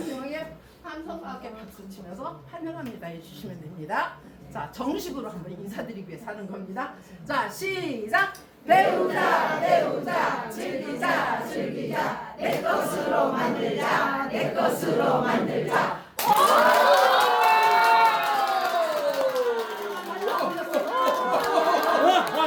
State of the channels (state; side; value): identical; both; correlation 1.00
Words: 함성하게 박수 치면서 환영합니다 해주시면 됩니다. 자, 정식으로 한번 인사드리기 위해서 하는 겁니다. 자, 시작! 배우자, 즐기자, 내 것으로 만들자, 내 것으로 만들자.